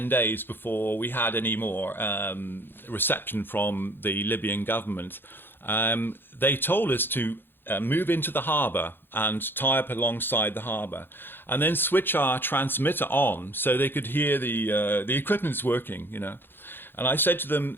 days before we had any more reception from the Libyan government. They told us to move into the harbour and tie up alongside the harbour, and then switch our transmitter on so they could hear the equipment's working, you know. And I said to them,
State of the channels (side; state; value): right; late; 0.10 ms